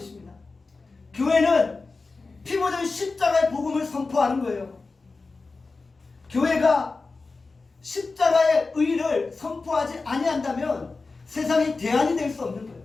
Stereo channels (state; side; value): quieter; right; 3.9 dB